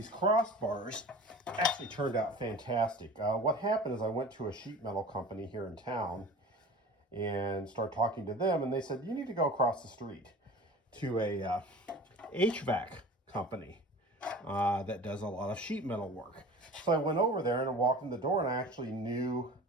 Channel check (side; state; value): both; normal; correlation 0.40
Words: actually turned out fantastic. What happened is I went to a sheet metal company here in town and started talking to them, and they said, you need to go across the street to a HVAC company that does a lot of sheet metal work. So I went over there and I walked in the door, and I actually knew